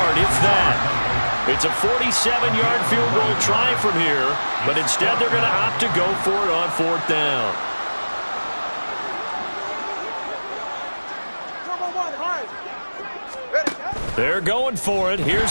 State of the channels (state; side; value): inverted; both; correlation -1.00